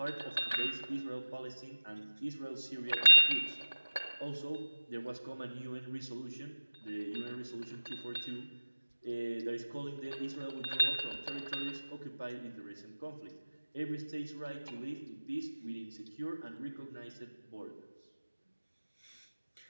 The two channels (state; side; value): inverted; both; correlation -1.00